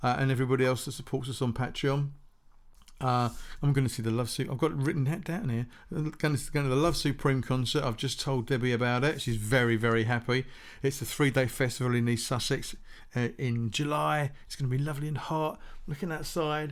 and everybody else that supports us on Patreon. I'm going to see the Love Supreme. I've got it written down here. I'm going to the Love Supreme concert. I've just told Debbie about it. She's very, very happy. It's a 3-day festival in East Sussex in July. It's going to be lovely and hot. Looking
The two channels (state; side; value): identical; both; correlation 1.00